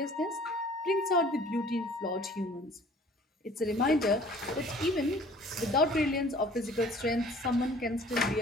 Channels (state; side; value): normal; both; correlation 0.52